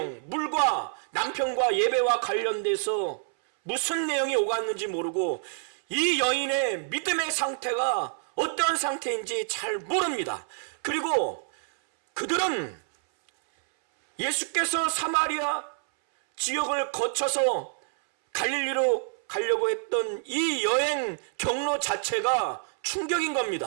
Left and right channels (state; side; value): silent; left; 60 dB below the other